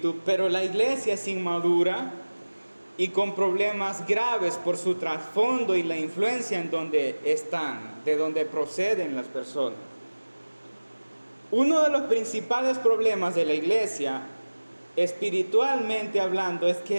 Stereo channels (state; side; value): inverted; both; correlation -1.00